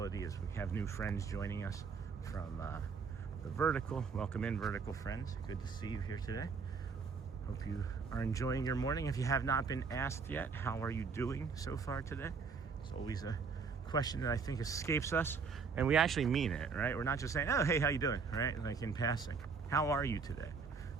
as we have new friends joining us from the Vertical. Welcome in, Vertical friends. Good to see you here today. Hope you are enjoying your morning. If you have not been asked yet, how are you doing so far today? It's always a question that I think escapes us, and we actually mean it, right? We're not just saying, oh, hey, how you doing, right? Like in passing. How are you today?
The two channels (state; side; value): quieter; left; 5.3 dB